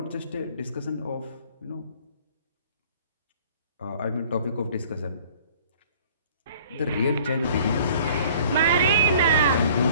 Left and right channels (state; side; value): inverted; both; correlation -0.52